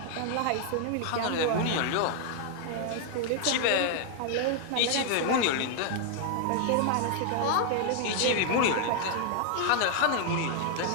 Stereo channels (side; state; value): both; different; correlation 0.00